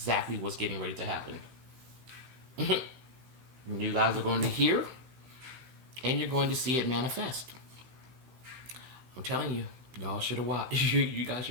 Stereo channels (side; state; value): left; late; 15 ms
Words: what's getting ready to happen. You guys are going to hear. And you're going to see it manifest. I'm telling you. Y'all should have watched. You guys